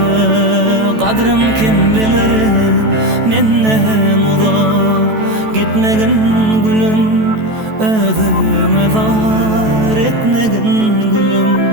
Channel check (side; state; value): left; late; 14 ms